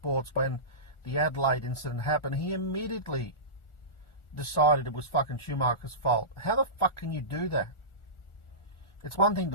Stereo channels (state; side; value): late; right; 1.4 ms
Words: when the Adelaide incident happened, he immediately decided it was fucking Schumacher's fault. How the fuck can you do that? It's one thing